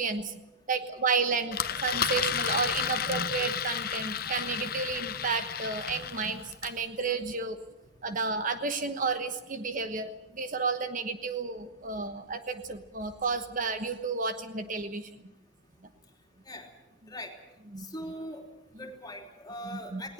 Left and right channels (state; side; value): normal; both; correlation -0.11